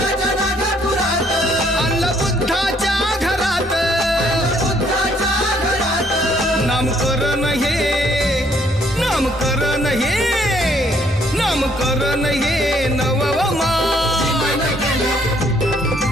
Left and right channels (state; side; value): normal; both; correlation 0.66